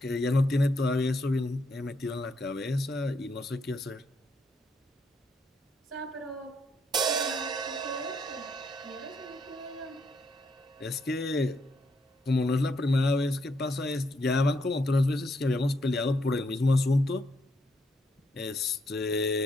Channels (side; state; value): both; normal; correlation 0.76